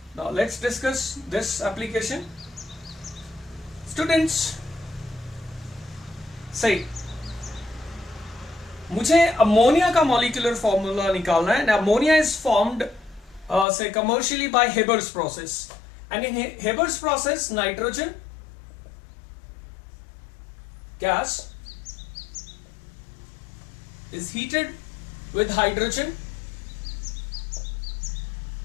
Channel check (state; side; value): drops out; right; at 13.7 s